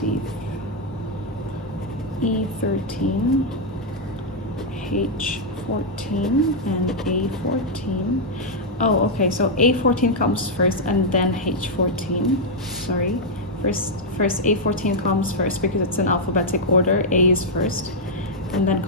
E13, H14, and A14. Oh, okay, so A14 comes first and then H14. Sorry, first A14 comes first because it's in alphabetic order. A is first, and then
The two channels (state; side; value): normal; both; correlation -0.03